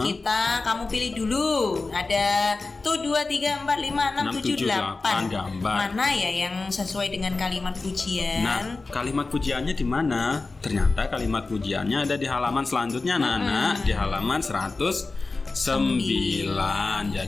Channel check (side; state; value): right; quieter; 3.7 dB